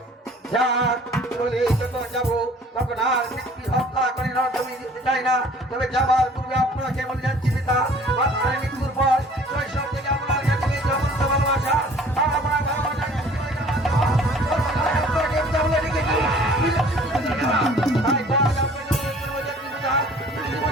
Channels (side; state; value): both; normal; correlation 0.51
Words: যাক চলে যখন যাবো তখন আর ব্যক্তি হত্যা করে জমি দিতে চাই না, তবে যাবার পূর্বে আপনাকে বলে যাচ্ছি পিতা, আপনার মৃত্যুর পর শৈশব থেকে আপনার কাছে সমস্ত ভালোবাসা আমার ভালোবাসাকে আপনাকে পিতা বলে রেখেছি। তাই তো আজ আপনাকে বলে যাচ্ছি পিতা, তুমি